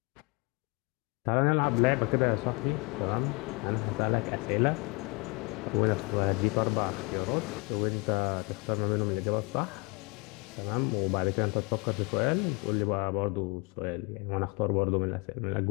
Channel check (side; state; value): right; quieter; 29.9 dB